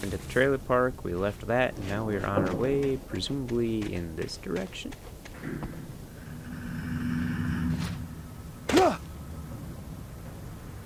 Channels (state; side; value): identical; both; correlation 1.00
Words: at the trailer park. We left that, and now we are on our way, presumably in this direction.